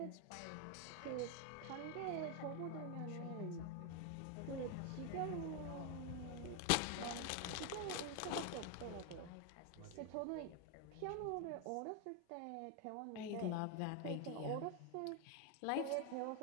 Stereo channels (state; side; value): different; both; correlation 0.01